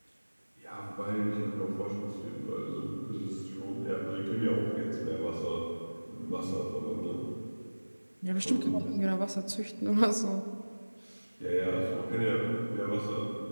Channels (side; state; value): both; inverted; correlation -1.00